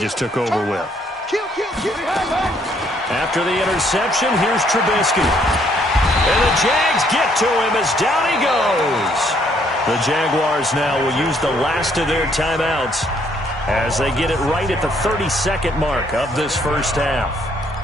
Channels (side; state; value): both; normal; correlation 0.67